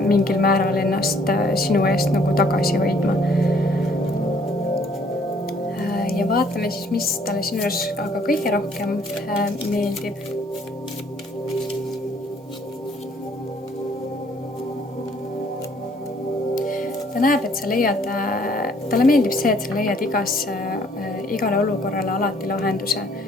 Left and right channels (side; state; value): both; normal; correlation 0.62